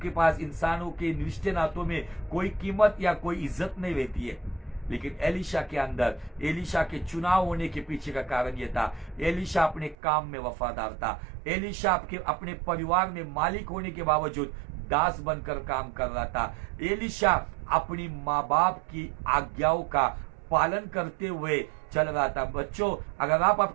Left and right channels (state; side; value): drops out; left; at 10.0 s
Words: पास इंसानों के रिश्ते नातों में कोई कीमत या कोई इज्जत नहीं रहती है। लेकिन एलिशा के अंदर, एलिशा के चुनाव होने के पीछे का कारण यह था, एलिशा अपने काम में वफादार था। एलिशा अपने परिवार में मालिक होने के बावजूद दास बनकर काम कर रहा था। एलिशा अपनी माँ बाप की आज्ञाओं का पालन करते हुए चल रहा था। बच्चों, अगर आप